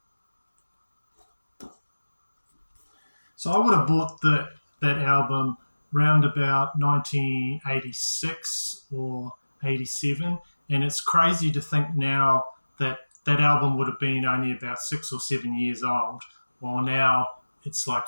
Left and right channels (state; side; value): inverted; both; correlation -1.00